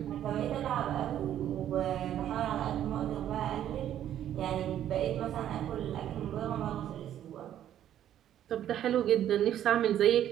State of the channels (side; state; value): left; quieter; 11.1 dB